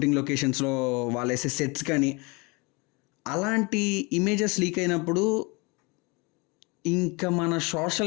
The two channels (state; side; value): quieter; right; 28.0 dB